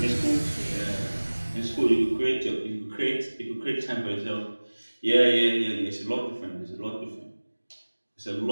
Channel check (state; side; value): inverted; both; correlation -1.00